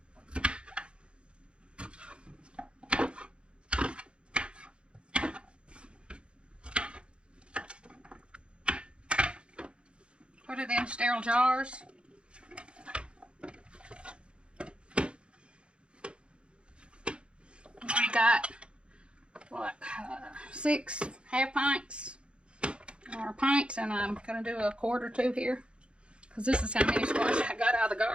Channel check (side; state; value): left; late; 0.056 ms